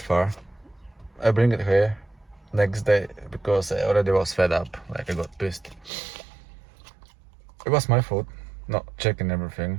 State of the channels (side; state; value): left; drops out; at 5.9 s